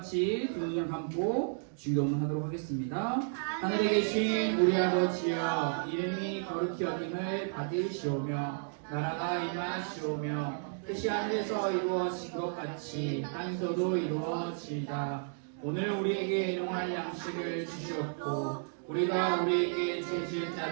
두 눈을 감고 주기도문 하도록 하겠습니다. 하늘에 계신 우리 아버지여, 이름이 거룩히 여김을 받으시오며 나라가 임하시오며 뜻이 하늘에서 이루어진 것 같이 땅에서도 이루어지이다. 오늘 우리에게 일용할 양식을 주시옵고 우리가 우리에게 죄 지은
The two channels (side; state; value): left; silent; digital silence